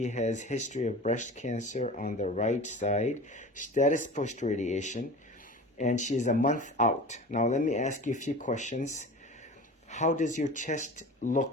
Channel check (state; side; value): normal; both; correlation 0.36